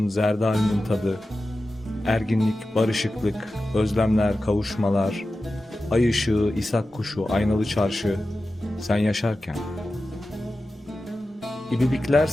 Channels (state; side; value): normal; both; correlation 0.93